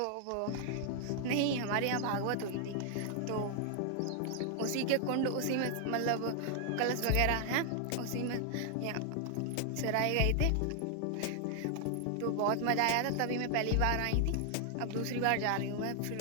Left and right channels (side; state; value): both; different; correlation 0.00